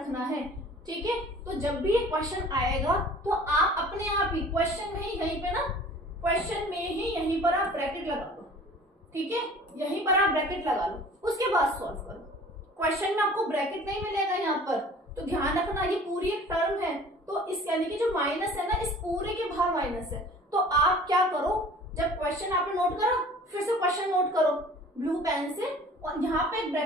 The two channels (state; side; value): normal; both; correlation 0.47